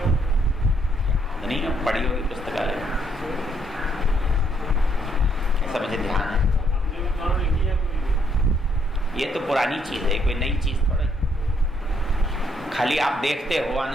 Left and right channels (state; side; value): normal; both; correlation 0.72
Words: नहीं, पढ़ी होगी पुस्तकालय में, ऐसा मुझे ध्यान है। ये तो पुरानी चीज है, कोई नई चीज थोड़ा। खाली आप देखते हो